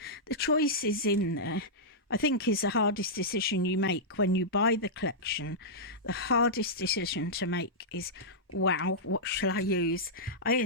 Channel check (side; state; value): both; normal; correlation -0.11